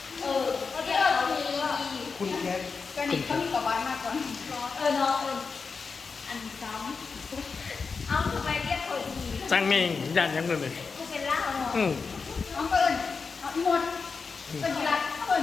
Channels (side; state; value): right; quieter; 5.0 dB